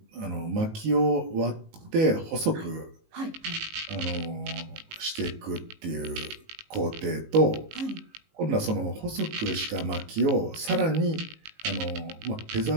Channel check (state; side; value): late; left; 19 ms